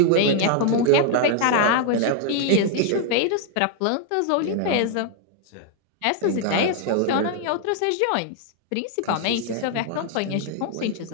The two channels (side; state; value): both; different; correlation 0.00